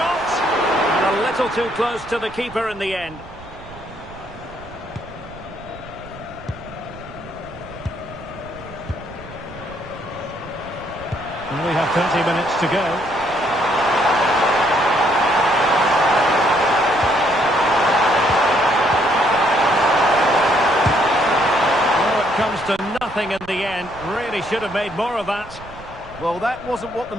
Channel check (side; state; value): right; noise; rumble, 18 dB below the sound